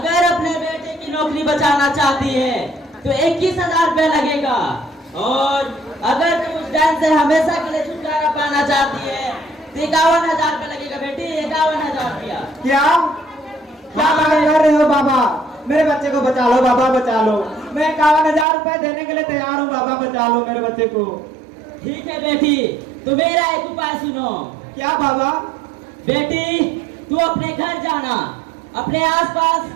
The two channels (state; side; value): drops out; left; at 18.4 s